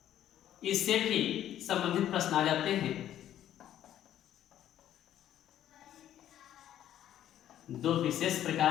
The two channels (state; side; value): quieter; right; 11.5 dB